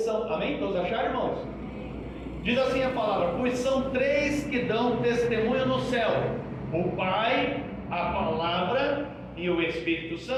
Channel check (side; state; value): both; identical; correlation 1.00